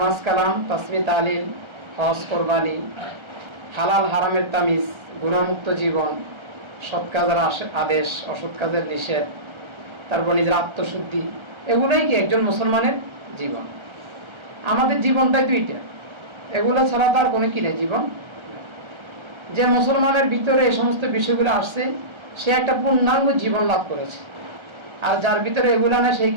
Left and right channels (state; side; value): late; left; 1.3 ms